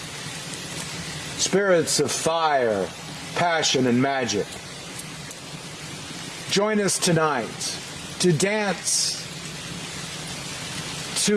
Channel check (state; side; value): identical; both; correlation 1.00